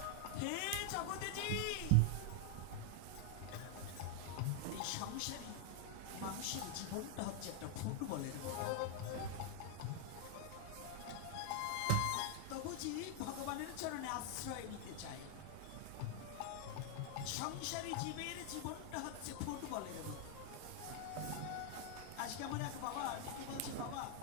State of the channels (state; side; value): different; both; correlation 0.00